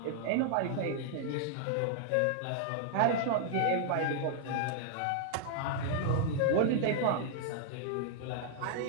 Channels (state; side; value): different; both; correlation 0.00